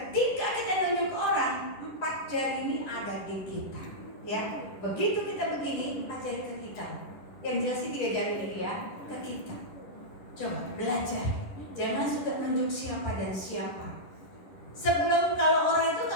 kita nunjuk orang, 4 jari ini ada di kita, ya. Begitu kita begini, 4 jari ke kita. Yang jelas sih 3 jari ini ya, ke kita. Coba belajar, jangan suka nunjuk siapa dan siapa. Sebelum kalau orang itu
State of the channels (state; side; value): late; right; 10 ms